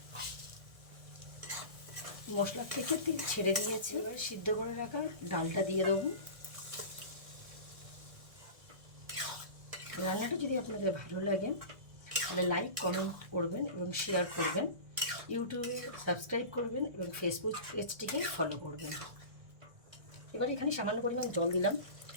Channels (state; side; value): late; left; 1.8 ms